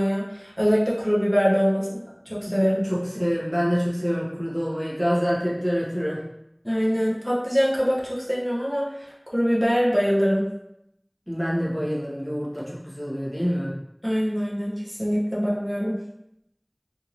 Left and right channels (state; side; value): identical; both; correlation 1.00